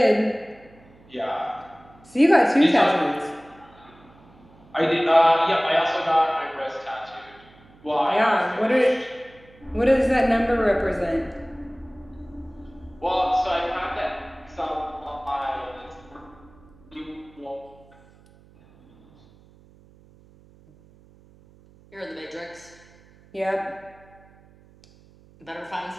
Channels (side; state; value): right; noise; hum, 27 dB below the sound